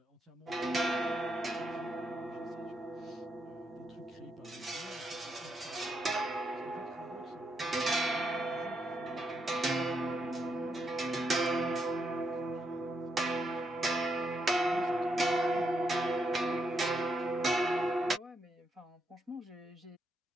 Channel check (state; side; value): normal; both; correlation 0.80